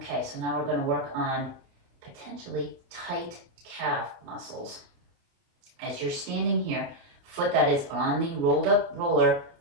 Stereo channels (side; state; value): left; late; 29 ms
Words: so now we're going to work on potentially tight calf muscles. As you're standing here, foot that is on the rolled up roller,